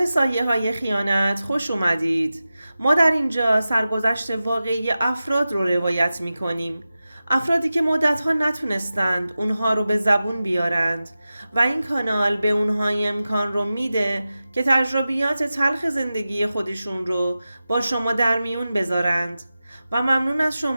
سایه های خیانت خوش اومدید. ما در اینجا سرگذشت واقعی افراد رو روایت می کنیم. افرادی که مدتها نتونستند اونها رو به زبون بیارند و این کانال به اونها امکان رو میده که تجربیات تلخ زندگی خودشون رو با شما در میون بذارند و ممنون از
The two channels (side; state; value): both; inverted; correlation -0.94